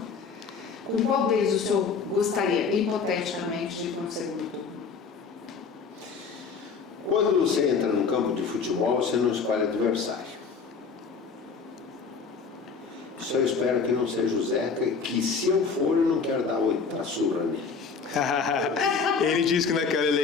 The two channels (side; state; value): right; quieter; 5.3 dB